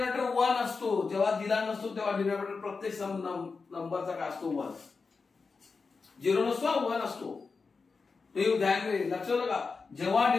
1 असतो. जेव्हा दिला नसतो तेव्हा डिनॉमिनेटर प्रत्येक नंबरचा काय असतो? 1. 0 नसतो, 1 असतो. ते ध्यान दे, लक्षात का? जेव्हा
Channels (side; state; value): right; quieter; 4.6 dB